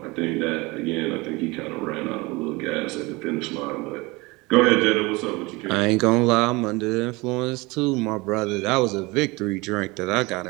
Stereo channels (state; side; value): quieter; left; 23.9 dB